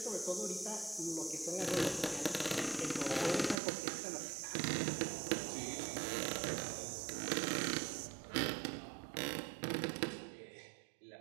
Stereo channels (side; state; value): left; drops out; at 3.6 s